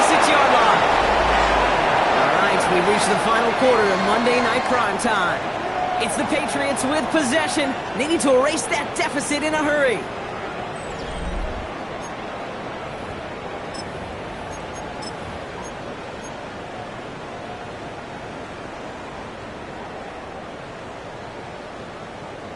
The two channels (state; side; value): identical; both; correlation 1.00